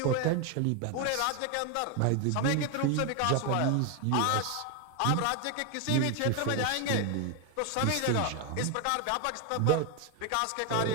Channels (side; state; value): both; different; correlation 0.01